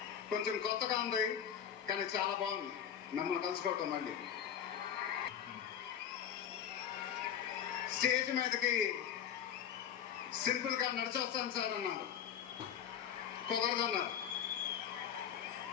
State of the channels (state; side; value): quieter; right; 9.0 dB